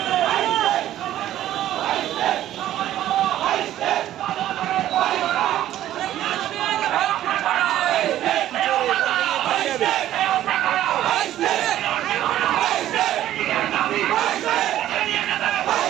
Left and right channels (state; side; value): quieter; left; 12.8 dB